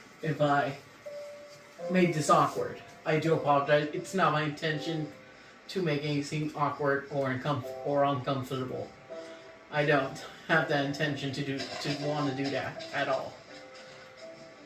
if I made this awkward. I do apologize. It's not my intention to make anything awkward or uncomfortable. I don't have that intention to want to do that at all.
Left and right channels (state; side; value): identical; both; correlation 1.00